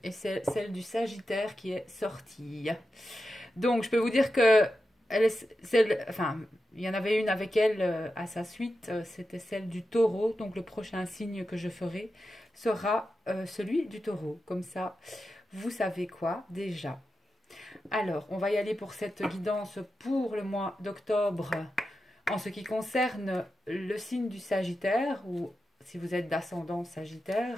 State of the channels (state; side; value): normal; both; correlation 0.90